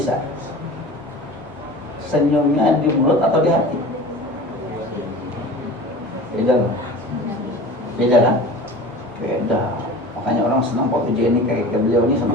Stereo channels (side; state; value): both; normal; correlation 0.37